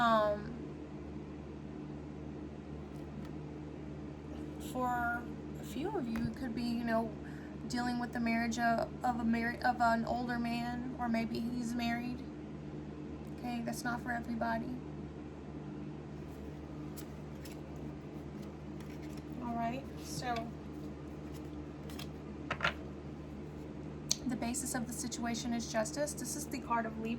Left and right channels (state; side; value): identical; both; correlation 1.00